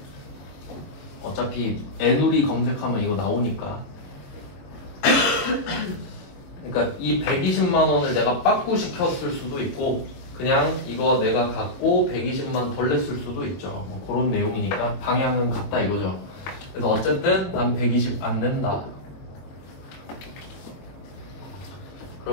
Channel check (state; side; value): late; right; 22 ms